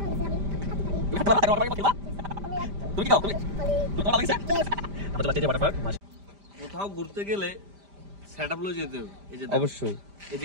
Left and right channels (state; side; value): late; left; 5.0 ms